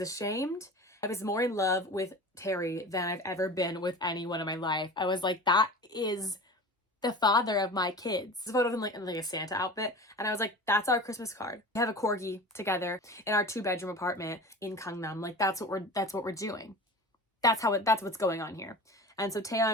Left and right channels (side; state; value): both; normal; correlation 0.35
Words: ashamed. I was more in love with Terry than I've ever been with anyone in my life. I was like, that is the father of my kids. This photo of him like in like a Santa outfit. And I was like, that's our Christmas card. We have a corgi together in our 2-bedroom apartment in Gangnam. Like, that's what we're doing. That's what's going on here. And so